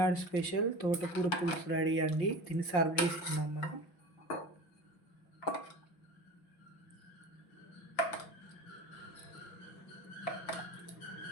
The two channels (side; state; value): right; late; 5.9 ms